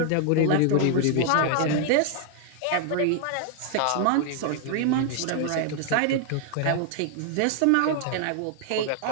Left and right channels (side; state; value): both; different; correlation 0.00